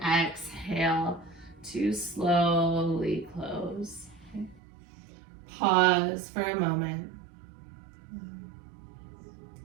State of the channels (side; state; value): left; drops out; at 4.6 s